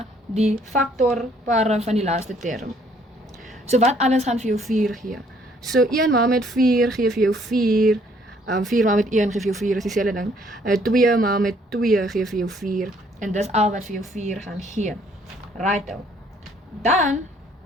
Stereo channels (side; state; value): both; normal; correlation 0.63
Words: die faktorpare van die laaste term. So wat alles gaan vir jou 4 gee? So 1 maal met 4 gee vir jou 4, 4 maal met 1 gee vir jou 4, is dieselfde ding. 2 maal met 2 gee vir jou 4, en dis al wat vir jou 4 gaan gee. Right. Dan